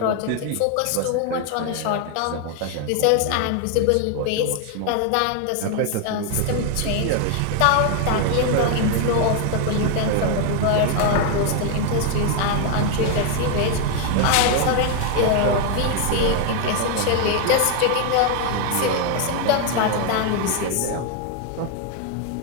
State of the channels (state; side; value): different; both; correlation 0.01